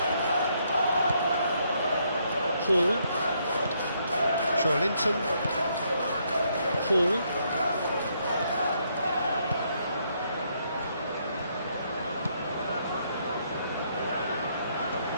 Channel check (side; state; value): both; inverted; correlation -0.73